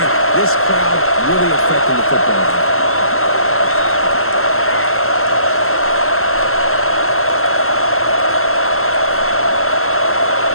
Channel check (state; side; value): late; right; 0.62 ms